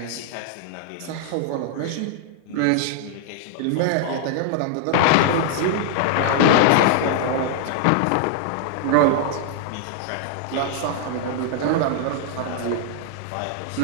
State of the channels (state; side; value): different; both; correlation 0.00